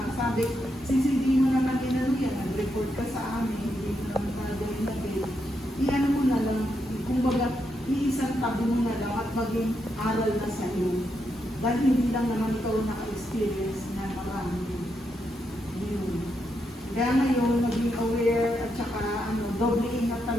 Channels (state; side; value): normal; both; correlation 0.81